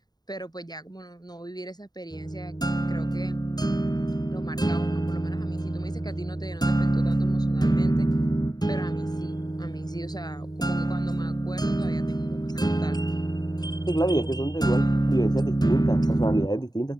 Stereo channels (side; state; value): right; late; 0.20 ms